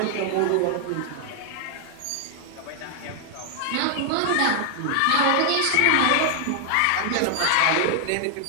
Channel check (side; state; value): both; different; correlation 0.00